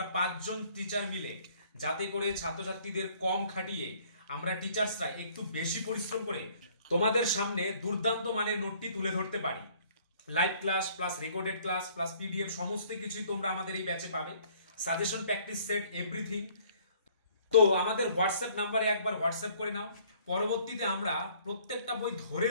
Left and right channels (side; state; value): both; inverted; correlation -0.59